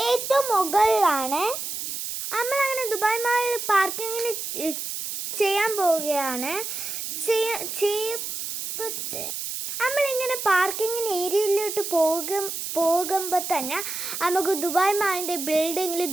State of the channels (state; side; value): noise; right; hiss, 5 dB below the sound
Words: ഏറ്റവും മുകളിലാണ്. നമ്മളങ്ങനെ ദുബായ് മാളിൽ പാർക്കിങ്ങിന് ചെയ്യാൻ പോവുകയാണ്. നമ്മളിങ്ങനെ പാർക്കിങ്ങിന് ഏരിയയിലോട്ട് പോകുമ്പോൾ തന്നെ നമുക്ക് ദുബായ് മാളിൻ്റെ ബിൽഡിങ്ങിൽ